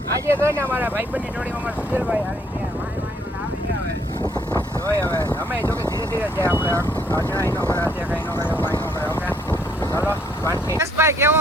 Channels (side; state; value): both; normal; correlation 0.66